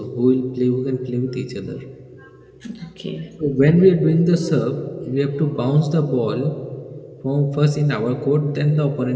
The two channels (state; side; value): identical; both; correlation 1.00